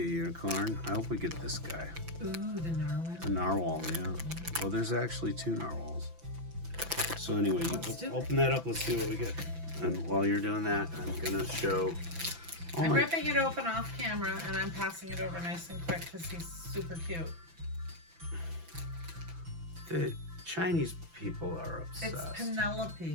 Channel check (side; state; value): left; late; 6.0 ms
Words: unicorn. I hope we get this guy. Ooh, the narwhal. A narwhal, yeah. Well, there's actually 2 narwhals. So anyway, you open that up. Let's see what we get. And while you're doing that, I'm gonna show. I'm ripping it open off camera, and I'm passing it over nice and quick because he's super cute. The Chinese people are obsessed. It's